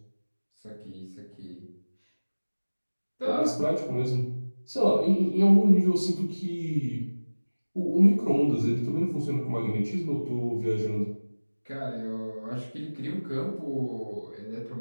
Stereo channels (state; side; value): inverted; both; correlation -1.00